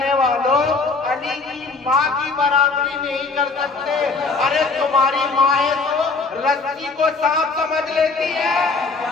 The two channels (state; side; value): quieter; right; 4.1 dB